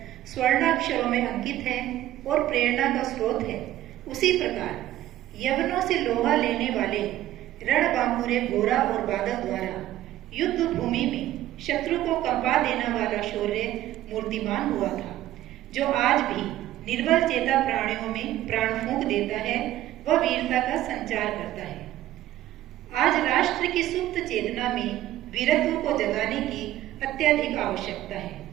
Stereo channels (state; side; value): quieter; left; 13.9 dB